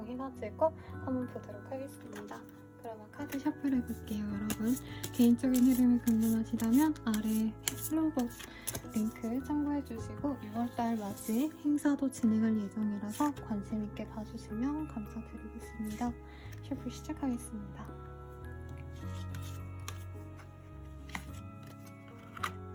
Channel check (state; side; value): identical; both; correlation 1.00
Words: 한번 보도록 하겠습니다. 그러면 카드 셔플 해볼게요. 여러분 개인적인 흐름이 궁금하시다면 아래 플로그 링크 참고해주시고 6월달 맞이 행사도 진행할 예정이라서 관심있게 봐주시면 감사드리겠습니다. 셔플 시작하겠습니다.